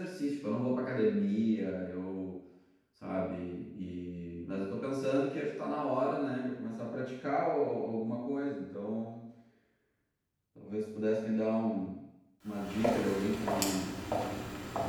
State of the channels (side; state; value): both; identical; correlation 1.00